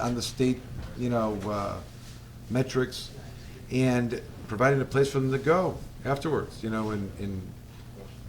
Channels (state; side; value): identical; both; correlation 1.00